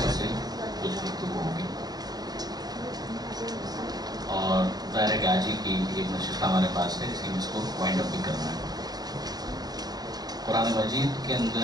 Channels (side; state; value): left; late; 0.19 ms